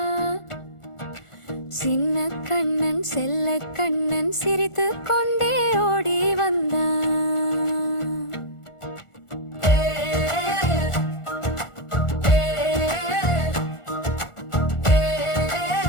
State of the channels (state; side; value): late; right; 1.4 ms